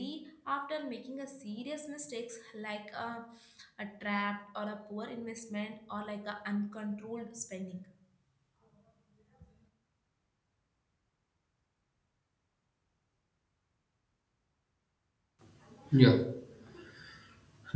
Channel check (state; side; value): identical; both; correlation 1.00